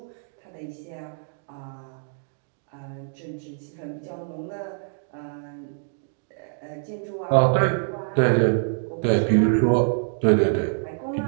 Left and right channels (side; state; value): left; silent; digital silence